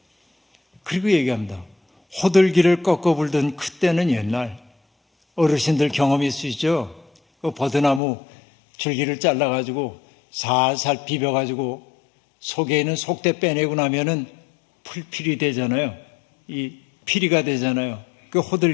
그리고 얘기합니다. 호들기를 꺾어 불던 그때는 옛날. 어르신들 경험이 있으시죠? 그 버드나무 줄기를 잘라가지고 살살 비벼가지고 속에 있는 속대 빼내고 나면은 풀필이 되잖아요. 이 피리가 되잖아요. 그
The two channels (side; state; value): right; drops out; at 8.0 s